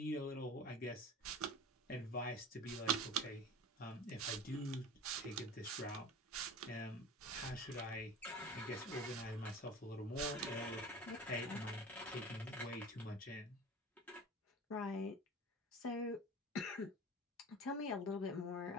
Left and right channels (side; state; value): both; normal; correlation 0.36